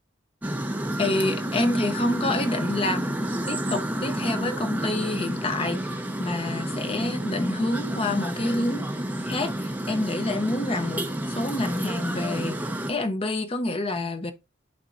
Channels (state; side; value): normal; both; correlation 0.68